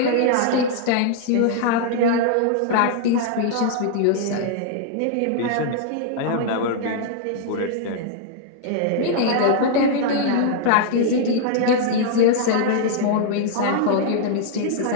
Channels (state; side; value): different; both; correlation 0.00